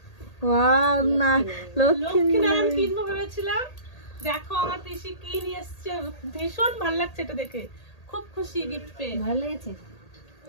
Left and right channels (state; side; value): late; right; 1.8 ms